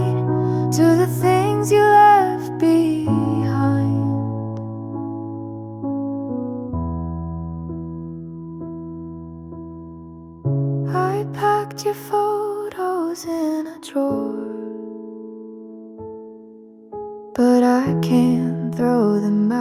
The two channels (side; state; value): both; identical; correlation 1.00